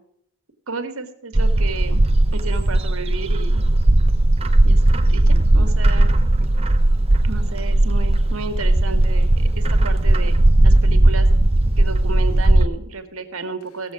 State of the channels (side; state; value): both; normal; correlation 0.96